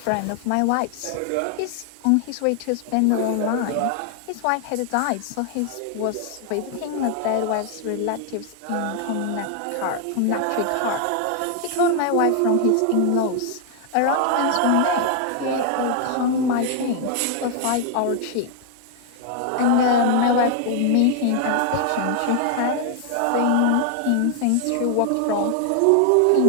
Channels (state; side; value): different; both; correlation 0.00